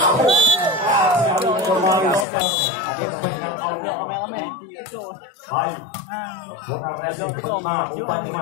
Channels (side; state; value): right; drops out; at 2.2 s